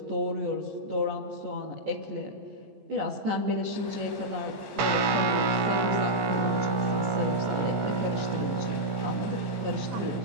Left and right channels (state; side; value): late; left; 14 ms